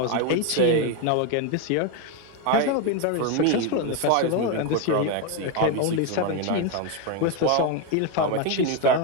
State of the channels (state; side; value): different; both; correlation 0.02